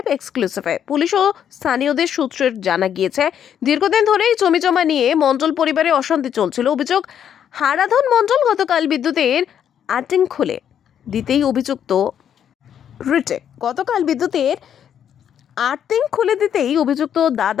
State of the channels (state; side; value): quieter; right; 9.1 dB